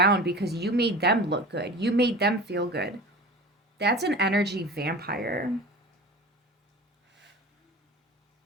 because you made them look good. You made them feel good. That's an energy vampire.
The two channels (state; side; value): normal; both; correlation 0.35